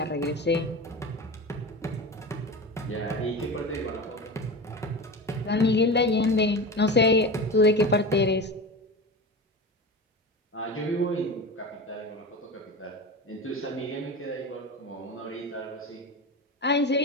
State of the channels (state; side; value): normal; both; correlation 0.28